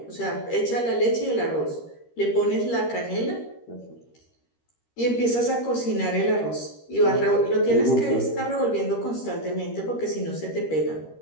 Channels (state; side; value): late; right; 13 ms